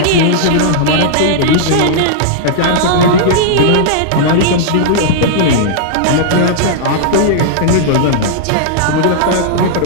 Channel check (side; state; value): both; different; correlation -0.01